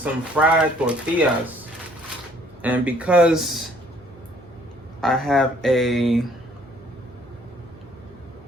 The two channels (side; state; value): right; noise; hum, 26 dB below the sound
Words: fried tortillas. And because I have a